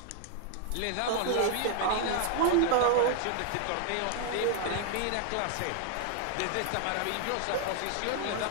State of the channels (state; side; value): different; both; correlation 0.00